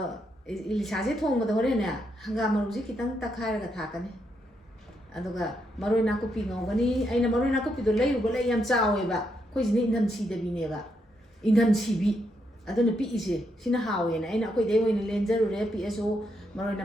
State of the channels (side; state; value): both; normal; correlation 0.79